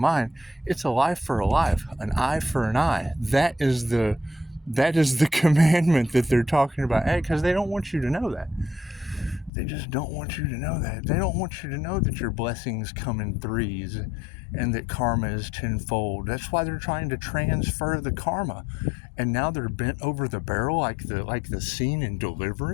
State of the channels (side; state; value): right; drops out; at 9.5 s